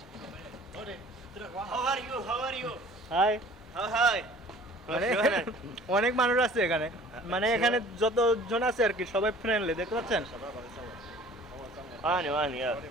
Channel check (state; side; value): normal; both; correlation 0.49